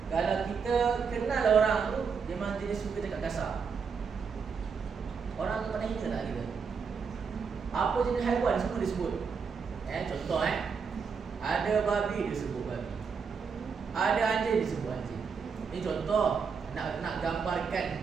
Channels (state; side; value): quieter; left; 5.8 dB